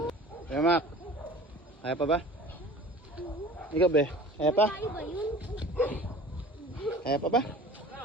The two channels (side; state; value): both; normal; correlation 0.43